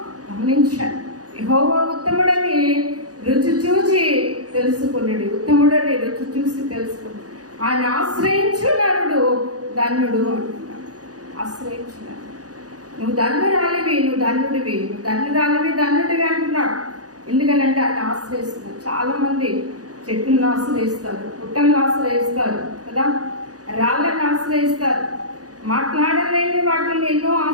గమనించాను. యెహోవా ఉత్తముడని రుచి చూసి తెలుసుకున్నాడు. ఉత్తముడని రుచి చూసి తెలుసుకున్నాడు. ఆయన ఆశ్రయించు నరుడు ధన్యుడు అంటున్నాడు. ఆశ్రయించున్నాడు. నువ్వు ధన్యురాలివి, నువ్వు ధన్యుడివి, నువ్వు ధన్యుడివి అంటున్నాడు. ఎందుకనంటే ఆయన ఆశ్రయిస్తున్నాడు. చాలా మంది చెట్లను ఆశ్రయిస్తారు, పుట్టలను ఆశ్రయిస్తారు కదా, రాళ్ళని ఆశ్రయిస్తారు, మాట్లాడలేని వాటిని ఎన్నో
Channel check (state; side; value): late; left; 0.67 ms